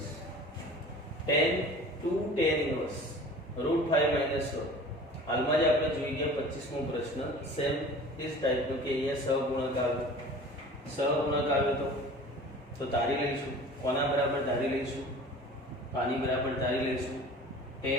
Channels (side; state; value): both; normal; correlation 0.42